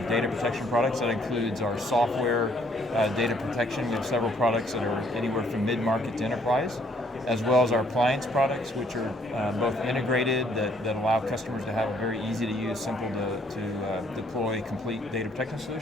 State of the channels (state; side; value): normal; both; correlation 0.65